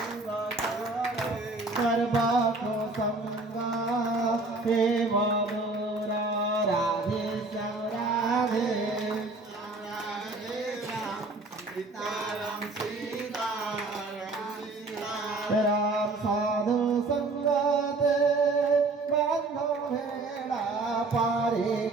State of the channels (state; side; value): quieter; left; 3.3 dB